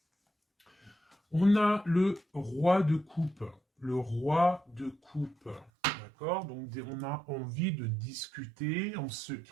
On a le roi de coupe. Le roi de coupe. D'accord? Donc, on a envie de discuter en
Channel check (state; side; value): drops out; left; at 5.7 s